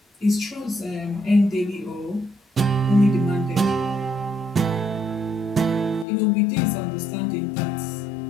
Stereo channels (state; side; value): drops out; right; at 6.1 s